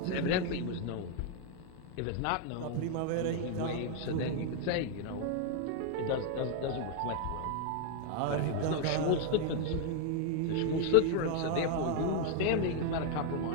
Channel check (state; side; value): different; both; correlation 0.00